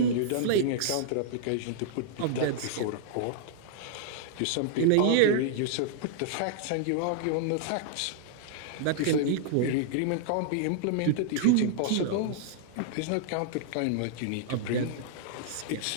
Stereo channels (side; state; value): both; different; correlation -0.01